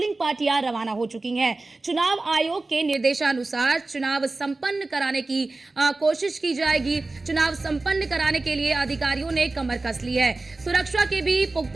पार्टियां रवाना हो चुकी हैं। चुनाव आयोग के निर्देशानुसार चुनाव संपन्न कराने की कोशिश की जाएगी। चुनाव संपन्न कराने के लिए अधिकारियों ने कमर कस ली है। सुरक्षा के भी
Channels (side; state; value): left; quieter; 3.3 dB